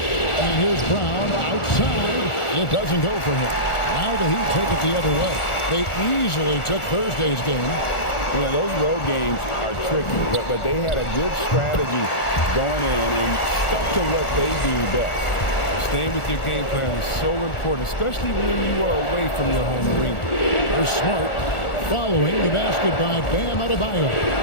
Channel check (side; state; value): right; late; 1.4 ms